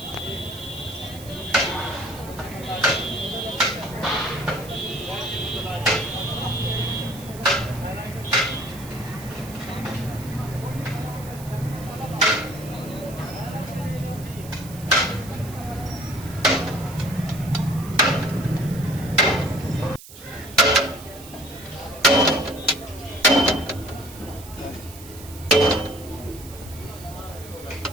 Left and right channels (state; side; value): noise; right; hiss, 17 dB below the sound